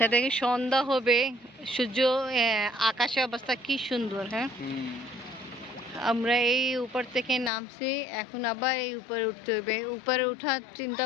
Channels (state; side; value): drops out; right; at 7.5 s